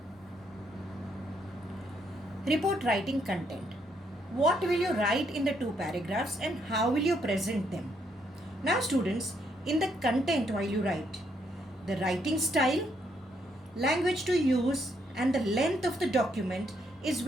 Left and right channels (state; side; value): normal; both; correlation 0.74